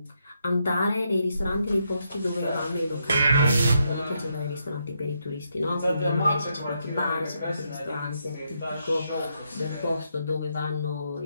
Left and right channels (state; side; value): inverted; both; correlation -0.79